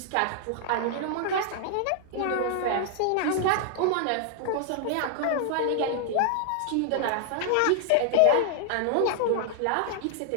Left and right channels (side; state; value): both; different; correlation 0.00